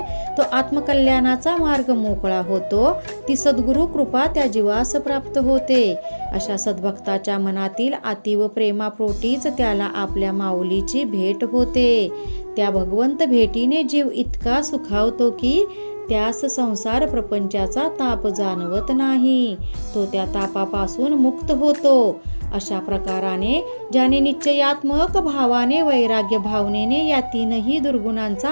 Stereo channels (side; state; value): both; inverted; correlation -1.00